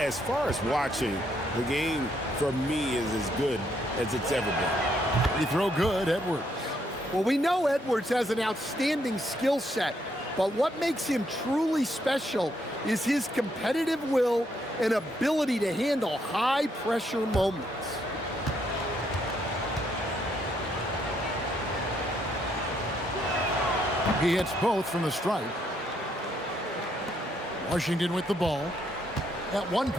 far as watching, the game for me is as good as it's ever been. Free throw good, Edwards. Well, we know Edwards has an outstanding skill set, but what makes him truly special is his competitive will and ability to handle high-pressure moments. He hits both from the stripe. Washington with the ball. At one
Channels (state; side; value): normal; both; correlation 0.73